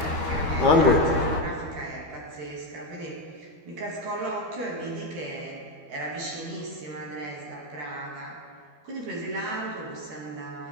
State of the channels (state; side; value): late; left; 12 ms